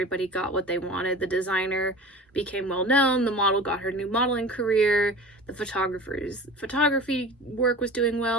got what they wanted. The designer became well known, the model got her new modeling career, the photographer's photography work was doing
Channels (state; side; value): normal; both; correlation 0.37